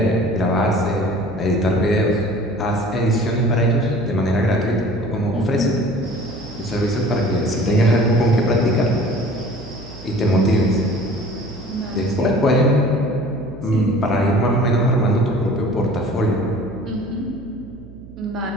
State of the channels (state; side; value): noise; right; hum, 18 dB below the sound